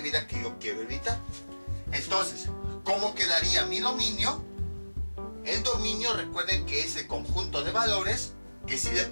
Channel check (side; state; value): both; inverted; correlation -1.00